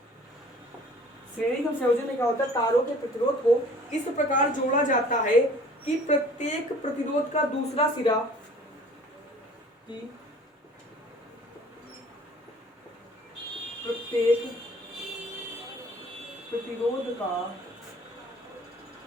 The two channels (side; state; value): both; normal; correlation 0.50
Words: श्रेणी क्रम संयोजन में क्या होता है, तारों के प्रतिरोध को इस प्रकार जोड़ा जाता है कि प्रत्येक प्रतिरोध का दूसरा सिरा प्रत्येक प्रतिरोध का